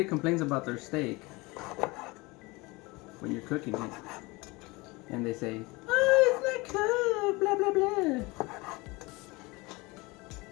complains about their steak when you're cooking it, and they say, "Oh, it's not cooked," blah blah blah,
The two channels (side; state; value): right; quieter; 24.0 dB